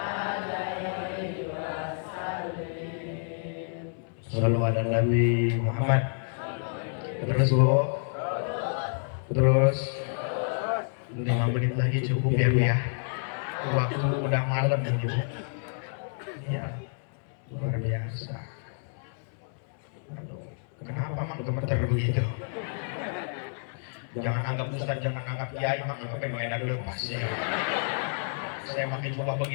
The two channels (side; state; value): right; silent; 58 dB below the other